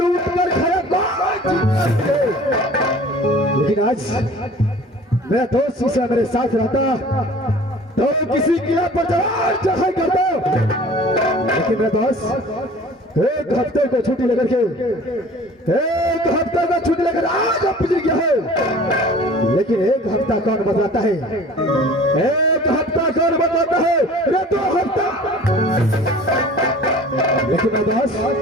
कर खाया, लेकिन आज मेरा दोस्त शिष्य मेरे साथ रहता तो किसी किला पर चढ़ाई करता, लेकिन मेरा दोस्त एक हफ्ते को छुट्टी लेकर आज पिछड़ गया है, लेकिन एक हफ्ता कौन बतलाता है, एक हफ्ता कौन बतलाता है, रे 2 हफ्ता। लेकिन मेरा दोस्त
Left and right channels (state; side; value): normal; both; correlation 0.46